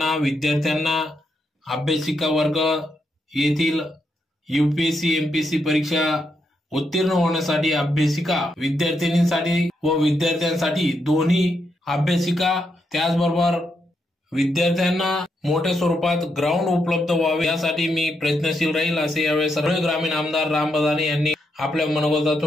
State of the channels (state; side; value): normal; both; correlation 0.81